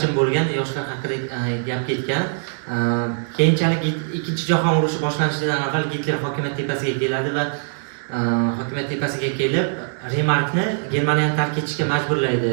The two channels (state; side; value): silent; left; 63 dB below the other